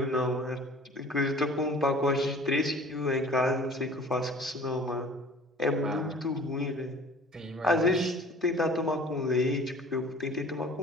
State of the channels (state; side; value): normal; both; correlation 0.47